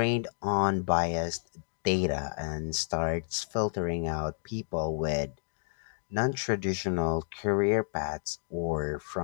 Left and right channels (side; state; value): right; silent; 57 dB below the other